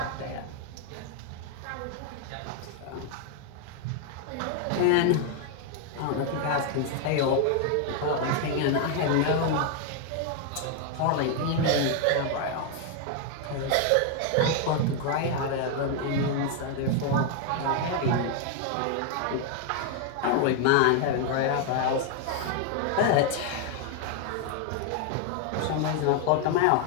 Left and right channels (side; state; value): both; different; correlation 0.00